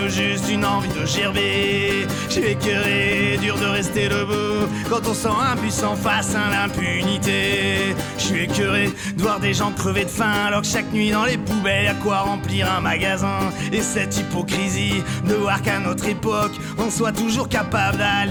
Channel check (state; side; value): identical; both; correlation 1.00